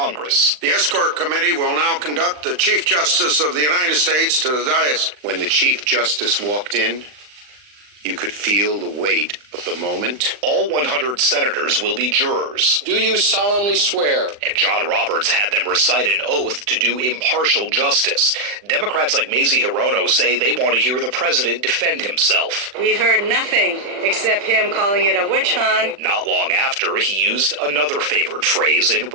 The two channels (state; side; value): late; left; 40 ms